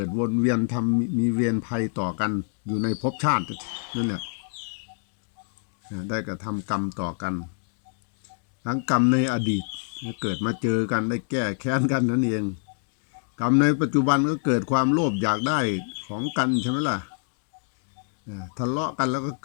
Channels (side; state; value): right; silent; digital silence